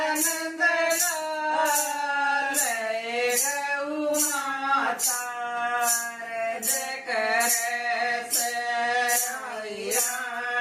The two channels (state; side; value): identical; both; correlation 1.00